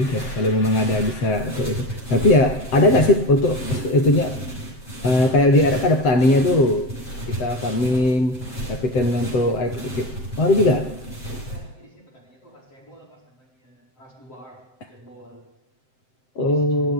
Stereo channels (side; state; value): right; late; 7.7 ms